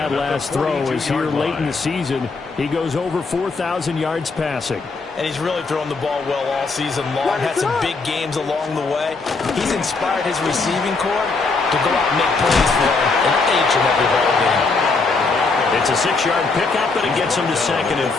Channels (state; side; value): quieter; right; 4.1 dB